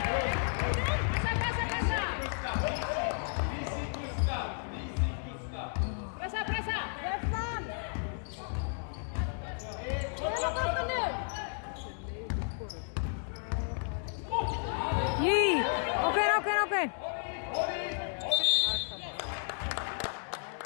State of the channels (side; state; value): right; silent; 56 dB below the other